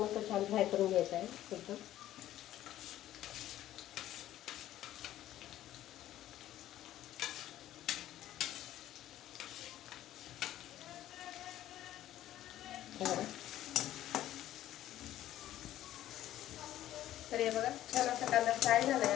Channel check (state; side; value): quieter; right; 13.3 dB